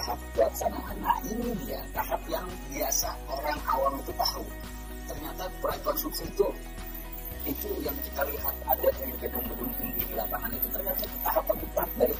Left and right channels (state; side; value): identical; both; correlation 1.00